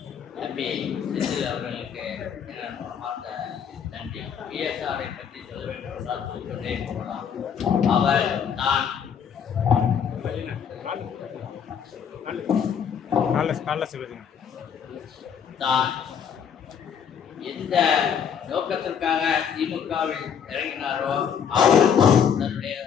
தம்பி செந்தில் அவர்களுக்கு மனமார்ந்த நன்றி. பிஎஸ்ஆரை பற்றி சொல்ல வேண்டும் என்றால் சொல்லிக்கொண்டே போகலாம். அவர் தான் தான் எந்த நோக்கத்திற்காக திமுகவில் இறங்கினாரோ அவர் தன்னுடைய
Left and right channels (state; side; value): quieter; right; 7.7 dB